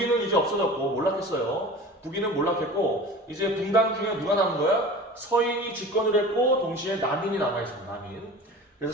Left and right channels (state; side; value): normal; both; correlation 0.38